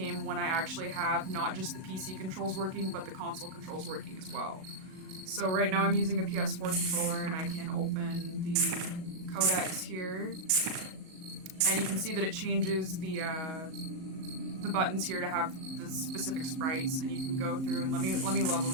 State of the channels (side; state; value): left; late; 38 ms